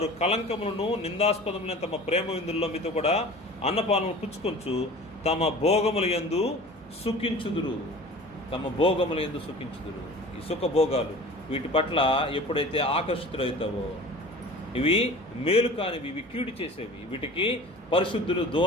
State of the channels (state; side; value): normal; both; correlation 0.41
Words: కలంకములను నిందాస్పదములైన తమ ప్రేమ విందుల్లో మీతో కూడా అన్నపానములు పుచ్చుకొంచు తమ భోగముల యందు సుఖించుదురు. తమ భోగముల యందు సుఖించుదురు. ఈ సుఖభోగాలు వీటి పట్ల ఎప్పుడైతే ఆకర్షితులవుతావో, ఇవి మేలు కానివి, ఇవి కీడు చేసేవి, వీటికి పరిశుద్ధులు